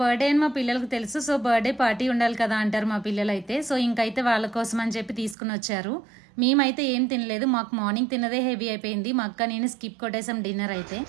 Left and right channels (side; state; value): left; drops out; at 5.4 s